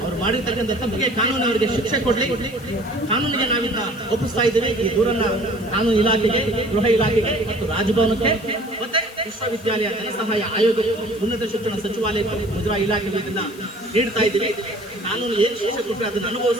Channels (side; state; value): left; noise; hiss, 22 dB below the sound